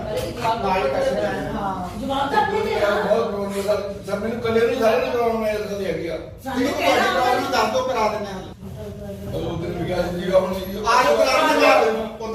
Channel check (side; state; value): both; identical; correlation 1.00